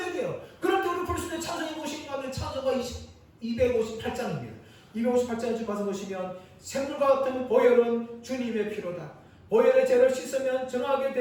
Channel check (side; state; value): both; identical; correlation 1.00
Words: 돼요. 그럴 때 우리 볼 수 있는 찬송이 무엇인가 하면 찬송가 258장입니다. 258장을 가서 보시면 샘물과 같은 보혈은 주님의 피로다. 보혈의 죄를 씻으면 정하게